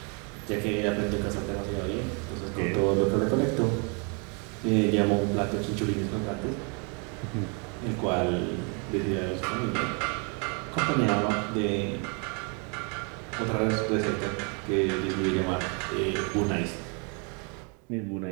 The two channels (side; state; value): left; quieter; 35.5 dB